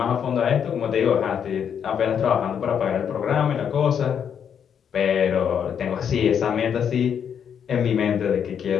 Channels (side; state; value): right; quieter; 8.0 dB